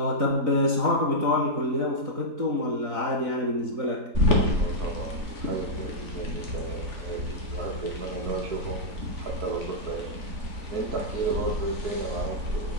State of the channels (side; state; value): left; late; 4.0 ms